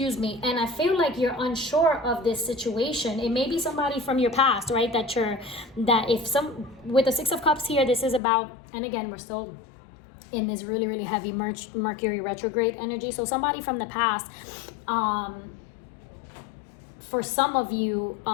me. And I feel like you're unsure of this situation. It may be somebody from your past, right? With the Six of Cups here, this is about, and again, we're still in this really, really heavy Mercury retrograde energy. So somebody from the past, for some of you,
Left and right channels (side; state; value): right; drops out; at 8.2 s